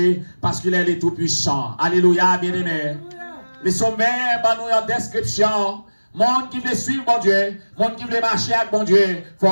parce qu'il est le Tout-Puissant. Alléluia, bien-aimé. Les sommets, nous en description. Monde qui veut suivre mon Dieu, monde qui veut marcher avec mon Dieu, il ne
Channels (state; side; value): inverted; both; correlation -1.00